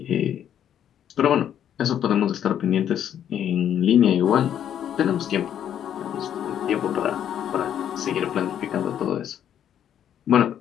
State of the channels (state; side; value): quieter; right; 9.8 dB